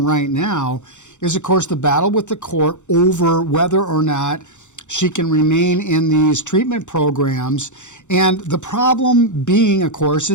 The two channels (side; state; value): right; late; 0.85 ms